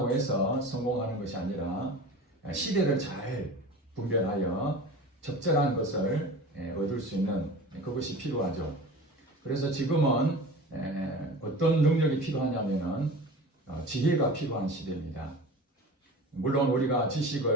해서 성공하는 것이 아니라 시대를 잘 분별하여 적절한 것을 얻을 수 있는 그것이 필요하죠. 그래서 지금은 어떤 능력이 필요하냐면은 지혜가 필요한 시대입니다. 물론 우리가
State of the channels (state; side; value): normal; both; correlation 0.36